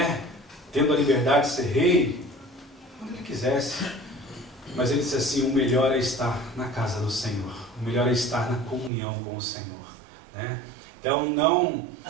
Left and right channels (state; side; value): drops out; left; at 8.9 s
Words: tendo a liberdade de ser rei quando ele quisesse. Mas ele disse assim: o melhor é estar na casa do Senhor, o melhor é estar na comunhão com o Senhor, né? Então